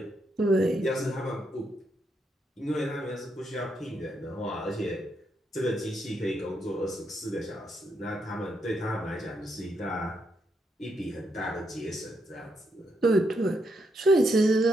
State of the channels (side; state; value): both; normal; correlation 0.79